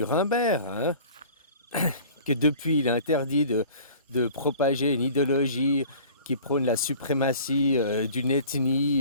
hein? Que depuis, il est interdit de propager une idéologie qui prône la suprématie d'une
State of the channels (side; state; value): both; inverted; correlation -0.45